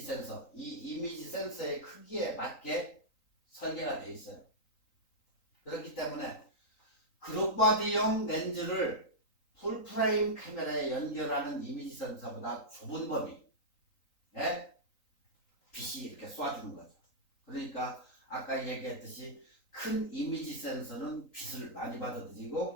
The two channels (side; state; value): right; late; 3.9 ms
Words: 센서, 이 이미지 센서의 크기에 맞게 설계가 되어 있어요. 그렇기 때문에 그룹바디용 렌즈를 풀프레임 카메라에 연결하는 이미지 센서보다 좁은 범위에 빛이 이렇게 쏴주는 거죠. 그러니까 아까 얘기했듯이 큰 이미지 센서는 빛을 많이